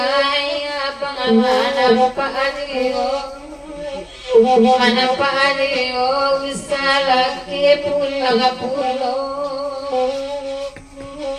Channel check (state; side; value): identical; both; correlation 1.00